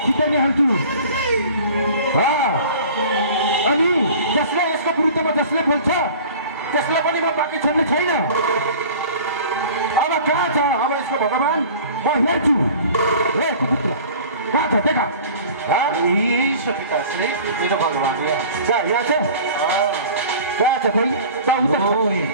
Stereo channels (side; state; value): both; inverted; correlation -0.43